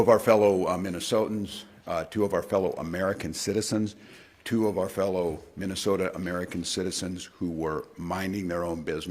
our fellow Minnesotans, two of our fellow American citizens, two of our fellow Minnesota American citizens who were minding their own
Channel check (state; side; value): identical; both; correlation 1.00